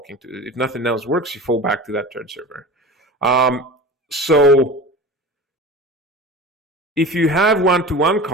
to. If nothing else works, you fall back to that turn server. So if you have one-to-one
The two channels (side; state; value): both; normal; correlation 0.34